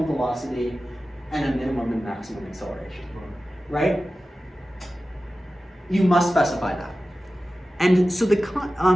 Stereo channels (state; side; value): normal; both; correlation 0.95